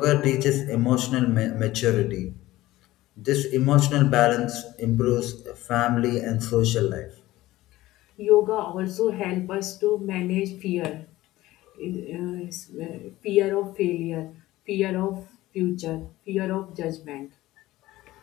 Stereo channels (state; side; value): quieter; right; 16.9 dB